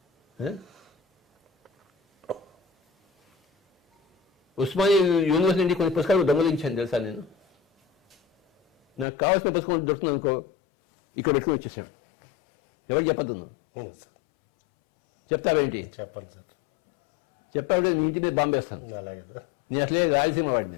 ఉస్మానియా యూనివర్సిటీ నుండి కొన్ని పుస్తకాలు దొంగలించాను తెలుసా నేను. నాకు కావాల్సిన పుస్తకం దొరుకుతుంది అనుకో, ఇక్కడ పెట్టుకుని వచ్చేసాడు. ఎవరు చెప్పద్దు? చెప్తావేంటి? చెప్పండి సార్. చెప్పాలంటే నీ ఇంటి మీద బాంబేస్తాను. అలాగే నేను అసలే రాయలసీమ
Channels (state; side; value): drops out; right; at 9.1 s